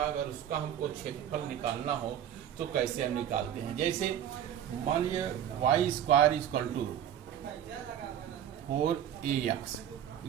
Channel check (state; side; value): quieter; left; 10.2 dB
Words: उसका हमको क्षेत्रफल निकालना हो तो कैसे हम निकालते हैं। जैसे मान लीजिए y square equal to 4ax,